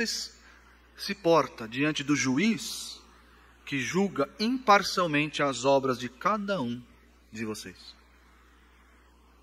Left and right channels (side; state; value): both; identical; correlation 1.00